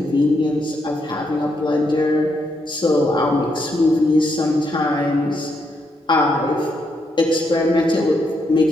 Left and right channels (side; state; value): both; normal; correlation 0.78